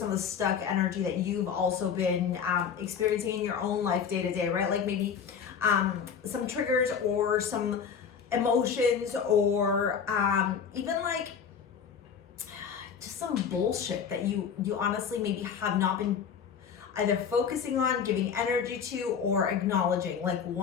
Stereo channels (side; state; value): right; quieter; 7.0 dB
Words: of the stuck energy that you've also been experiencing in your own life day to day, right? Like maybe some triggers or some emotions, or even like just some bullshit that you honestly maybe have not been either focusing on, giving energy to, or acknowledging, like